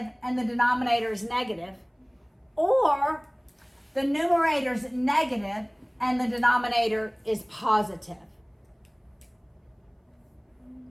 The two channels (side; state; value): both; identical; correlation 1.00